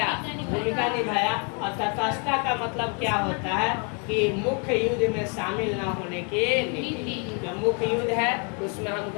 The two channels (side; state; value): right; quieter; 37.2 dB